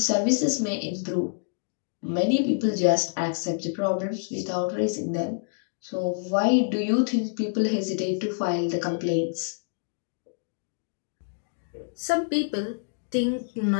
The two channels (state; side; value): silent; right; digital silence